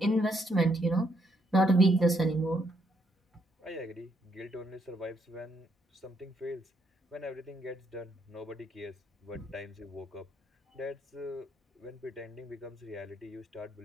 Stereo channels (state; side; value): normal; both; correlation 0.74